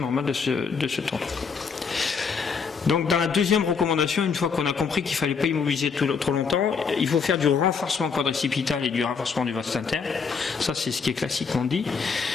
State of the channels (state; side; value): quieter; right; 5.6 dB